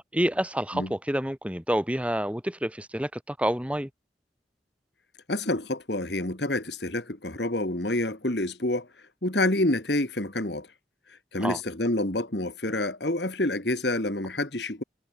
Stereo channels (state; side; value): normal; both; correlation 0.52